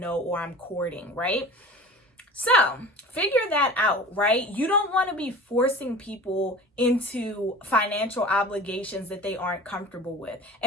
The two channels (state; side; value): normal; both; correlation 0.38